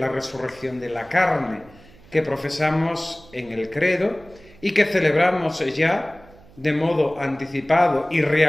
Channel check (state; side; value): noise; right; hum, 25 dB below the sound